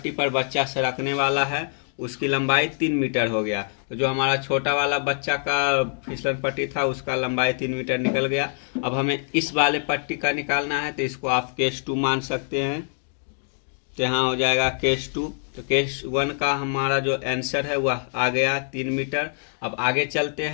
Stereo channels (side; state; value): right; silent; 62 dB below the other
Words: पर बच्चा सरकने वाला है उसकी लंबाई 3 मीटर हो गया। तो जो हमारा छोटा वाला बच्चा का फिसलन पट्टी था उसका लंबाई 3 मीटर निकल गया। अब हमें इस वाले पट्टी का निकालना है, तो इसको आप केस 2 मान सकते हैं। तो यहाँ हो जाएगा केस 2। तो केस 1 का हमारा जो आंसर है वह आ गया 3 मीटर। अब आगे चलते